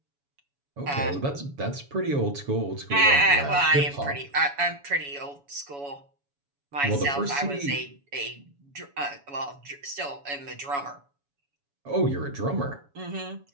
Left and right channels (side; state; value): left; late; 7.1 ms